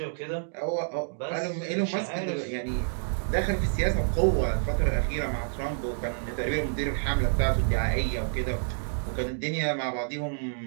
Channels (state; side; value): silent; left; digital silence